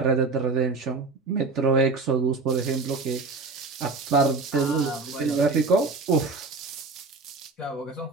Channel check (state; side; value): quieter; left; 3.9 dB